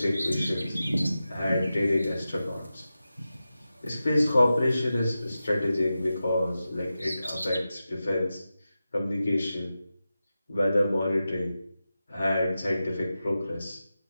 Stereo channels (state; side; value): inverted; both; correlation -0.93